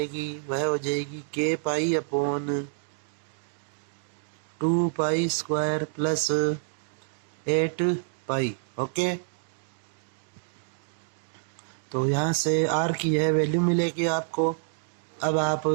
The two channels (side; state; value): left; silent; digital silence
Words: वह हो जाएगी k pi upon 2π² plus 8π। Okay, तो यहाँ से r की यह वैल्यू मिलेगी आपको। अब आप